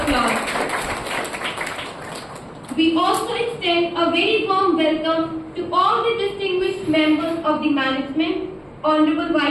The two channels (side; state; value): both; identical; correlation 1.00